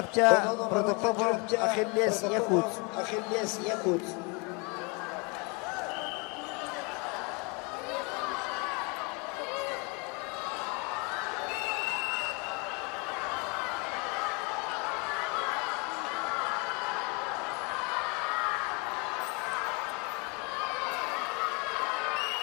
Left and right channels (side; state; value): right; quieter; 31.1 dB